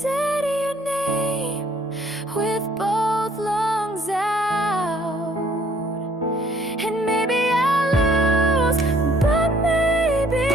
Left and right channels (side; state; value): both; normal; correlation 0.60